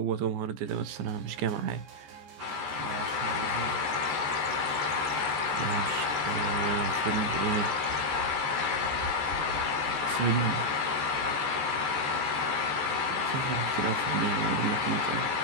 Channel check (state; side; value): late; left; 14 ms